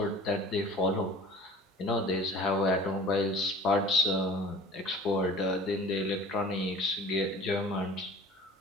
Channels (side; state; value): both; normal; correlation 0.43